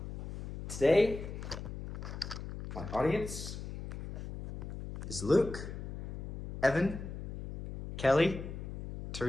Today, my audience is Luke, Evan, Kelly,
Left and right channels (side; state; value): left; noise; hum, 8 dB below the sound